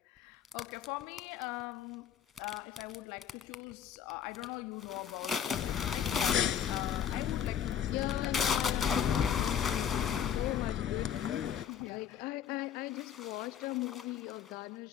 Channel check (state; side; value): quieter; right; 9.1 dB